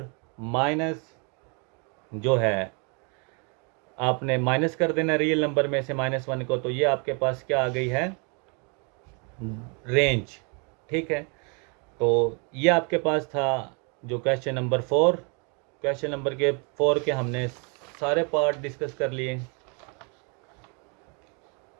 माइनस जो है आपने माइनस कर देना रियल नंबर में से -1 को, तो ये आपके पास क्या आ गई है रेंज। ठीक है, तो ये आपके पास था जो क्वेश्चन नंबर 4। क्वेश्चन नंबर के 4 के हमने सारे पार्ट डिस्कस कर लिए।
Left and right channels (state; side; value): quieter; left; 34.9 dB